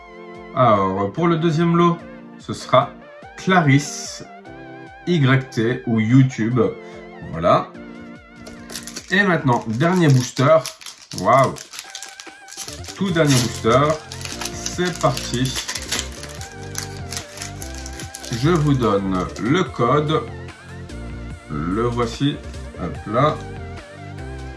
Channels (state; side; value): identical; both; correlation 1.00